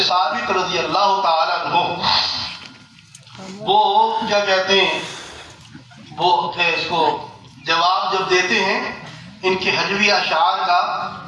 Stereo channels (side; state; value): both; identical; correlation 1.00